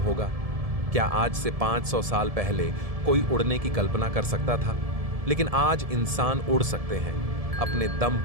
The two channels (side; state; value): left; late; 1.7 ms